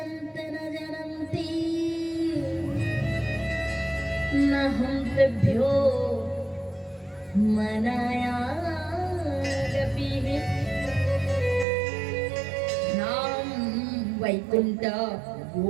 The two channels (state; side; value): drops out; left; at 11.7 s